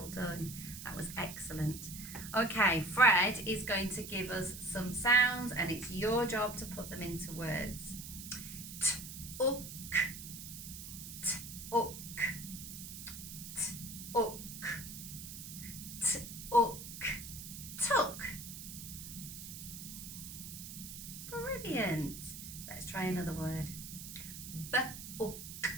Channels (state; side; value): noise; right; hiss, 10 dB below the sound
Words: done. That was excellent. Okay, Fred is going to give us some sounds and it's your job to put them into words. T-ook, t-ook, t-ook, t-ook, took. Brilliant. Let's try another word. B-ook,